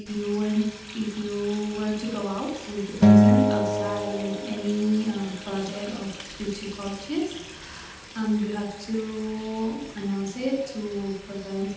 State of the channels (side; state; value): both; identical; correlation 1.00